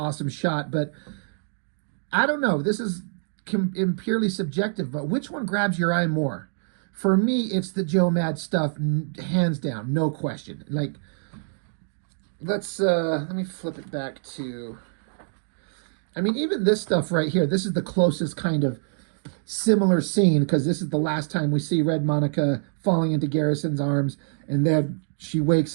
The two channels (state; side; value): silent; left; digital silence